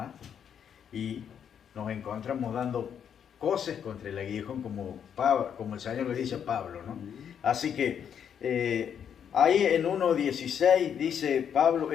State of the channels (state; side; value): quieter; right; 8.3 dB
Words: Y nos encontramos dando cosas contra el aguijón, como el Señor le dice a Pablo, ¿no? Así que ahí en 1:16 dice Pablo,